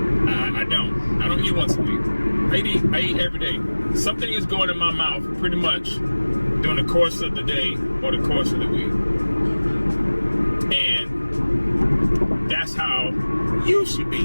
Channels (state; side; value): inverted; both; correlation -1.00